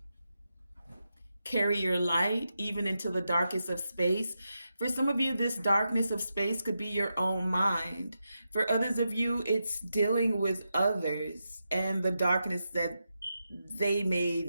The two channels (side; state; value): both; inverted; correlation -0.88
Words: carry your light even into the darkest of space. For some of you, this darkness of space could be your own mind. For others of you, it's dealing with others and the darkness that they may